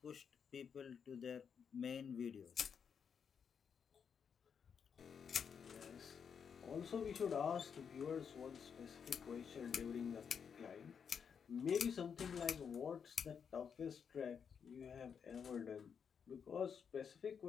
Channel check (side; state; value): right; quieter; 6.9 dB